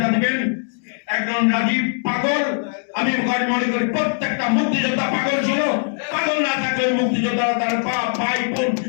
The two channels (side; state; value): right; silent; 65 dB below the other